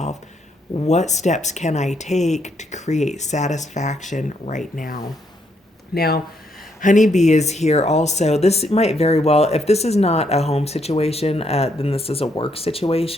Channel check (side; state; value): both; normal; correlation 0.75